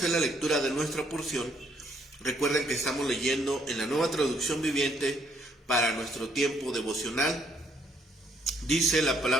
la lectura de nuestra porción. Recuerden que estamos leyendo en la Nueva Traducción Viviente para nuestro tiempo devocional. Dice la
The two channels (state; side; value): normal; both; correlation 0.69